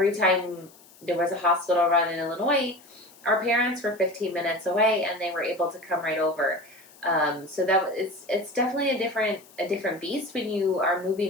time there was a hospital run in Illinois, our parents were 15 minutes away, and they were able to come right over. So it's definitely a different beast when you are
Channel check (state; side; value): noise; left; hiss, 25 dB below the sound